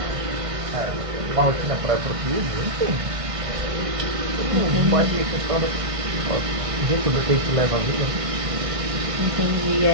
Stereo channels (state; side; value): late; left; 1.5 ms